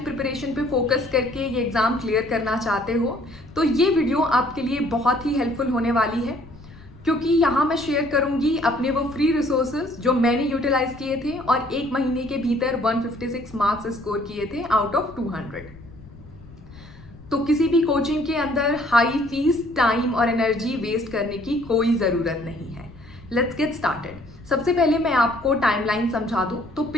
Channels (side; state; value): left; noise; rumble, 20 dB below the sound